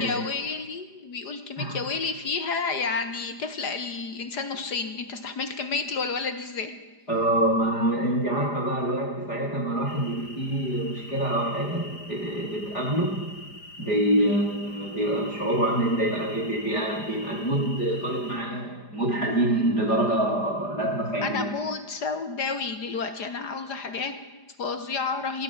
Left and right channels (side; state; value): right; late; 4.9 ms